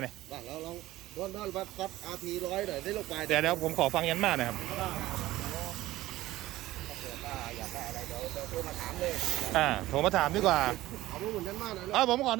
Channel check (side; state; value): left; quieter; 16.5 dB